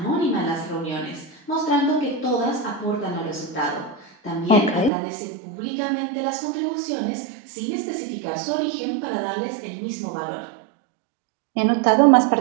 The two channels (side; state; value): left; drops out; at 4.9 s